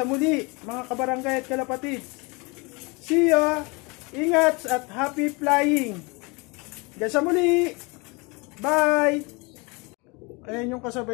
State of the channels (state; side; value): quieter; right; 27.8 dB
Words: muli, mga kabarangay at kalapatids. See ya! Ingat at happy flying! Hanggang sa muli! Bye! Ayan yung